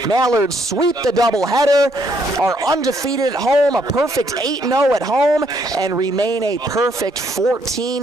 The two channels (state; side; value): normal; both; correlation 0.70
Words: Mallards sweep the doubleheader, are undefeated at home, a perfect 8-0 at home, and remain a perfect